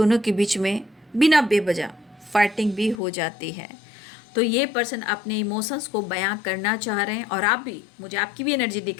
के बीच में बिना बेवजह फाइटिंग भी हो जाती है। तो ये पर्सन अपने इमोशंस को बयां करना चाह रहे हैं और आप भी, मुझे आपकी भी एनर्जी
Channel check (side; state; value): right; drops out; at 3.0 s